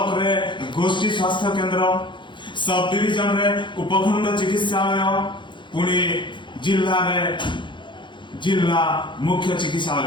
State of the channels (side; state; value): right; late; 0.23 ms